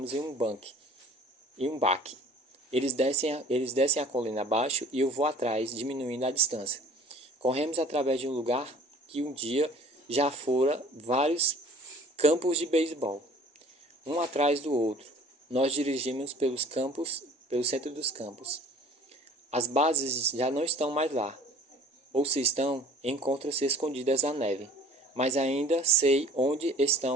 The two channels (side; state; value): both; normal; correlation 0.49